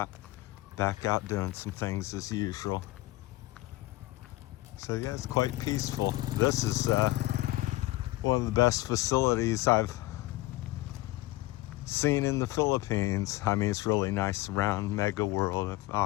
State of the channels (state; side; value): quieter; right; 18.5 dB